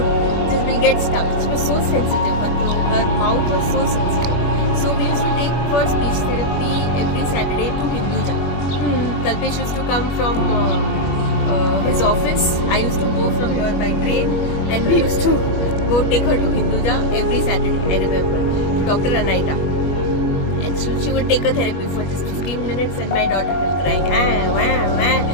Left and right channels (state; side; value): late; right; 21 ms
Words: just will get stuck. She was so sensitive. Her mouth was so sensitive. So we used to take for speech therapy every Saturday to Hinduja. Kalpesh used to come from his office. I used to go from here by train, and we used to go take her to Hinduja every Saturday, I remember, to Dr. Anaita. And she would take a therapy for just 15 minutes and my daughter will cry.